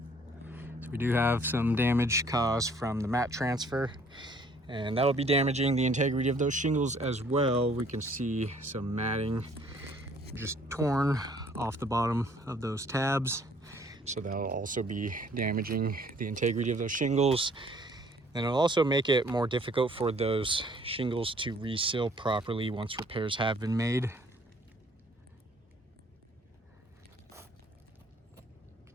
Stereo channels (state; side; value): normal; both; correlation 0.59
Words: So we do have some damage caused from the mat transfer, and that'll be damaging the integrity of those shingles as well. We can see some matting just torn off the bottom of those tabs, so that'll also be damaging the integrity of those shingles. And it'll also make it more difficult for those shingles to reseal properly once repairs have been made.